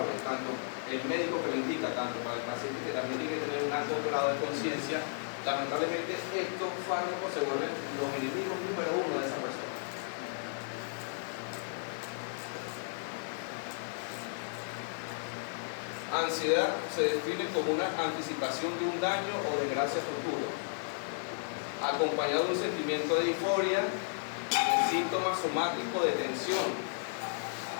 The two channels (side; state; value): right; silent; digital silence